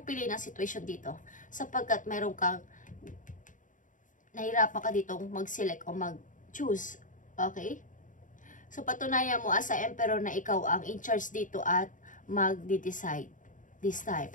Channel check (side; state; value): right; late; 0.38 ms